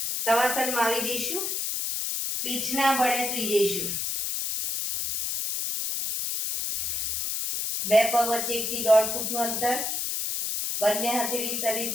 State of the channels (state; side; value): noise; left; hiss, 1 dB below the sound